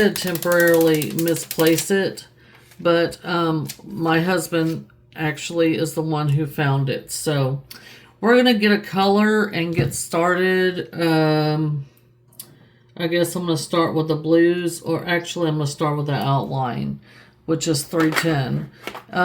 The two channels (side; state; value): both; identical; correlation 1.00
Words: temporarily misplace it. But my husband actually is the one who found it. So we're going to get a color and get started. I guess I'm going to start with the blues, or actually I'm going to start with the outline, which is 310.